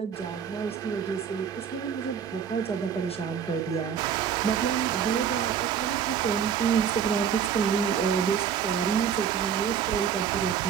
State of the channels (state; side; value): quieter; left; 8.0 dB